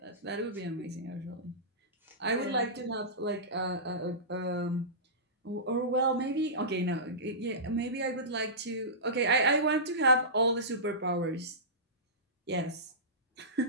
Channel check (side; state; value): both; normal; correlation -0.19